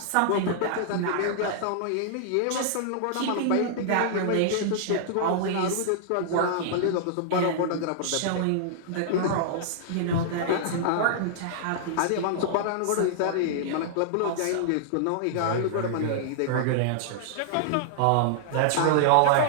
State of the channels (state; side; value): different; both; correlation -0.01